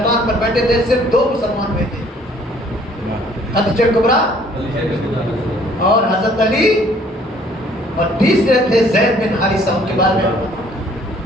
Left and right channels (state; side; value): normal; both; correlation 0.59